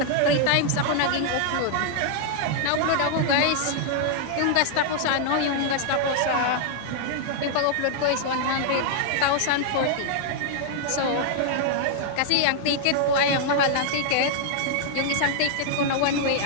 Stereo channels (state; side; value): different; both; correlation -0.01